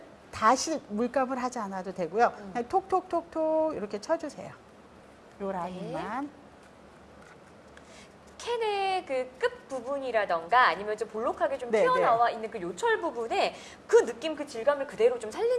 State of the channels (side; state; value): both; identical; correlation 1.00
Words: 다시 물감을 하지 않아도 되고요. 그냥 톡톡톡톡 이렇게 쳐주세요. 요 라인만. 캔의 그 끝 부분이라던가 아니면 좀 볼록하게 좀 네, 튀어나와 있는 그 요철 부분에 그 느낌, 그 질감을 그대로 좀